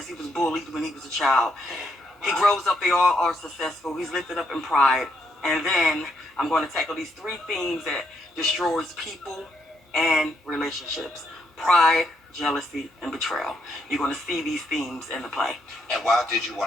he was bullied when he was a child. He grows up, they all are successful. He's lifted up in pride. And then I'm going to tackle these three themes that destroys people and relationships: pride, jealousy, and betrayal. You're going to see these themes in the play. And why did you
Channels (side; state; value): both; normal; correlation 0.76